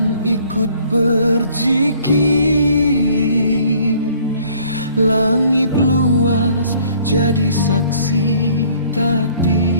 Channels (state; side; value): inverted; both; correlation -0.57